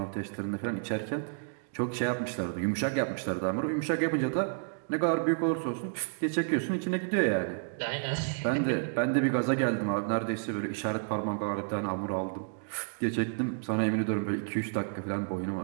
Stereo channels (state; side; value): silent; left; digital silence